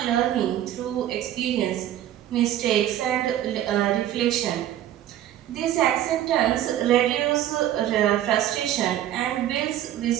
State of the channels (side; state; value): left; quieter; 12.1 dB